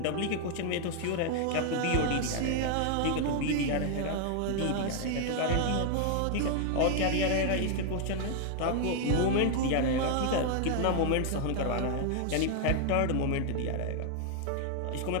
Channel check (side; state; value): both; different; correlation 0.00